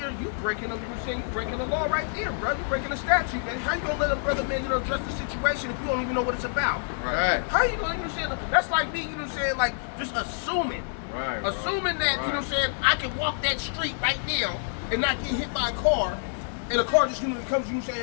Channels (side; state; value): right; silent; digital silence